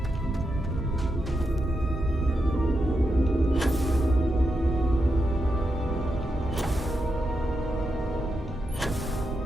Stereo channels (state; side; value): normal; both; correlation 0.85